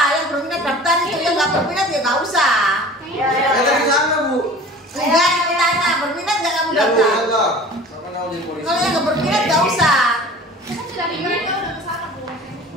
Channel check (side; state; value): both; normal; correlation 0.42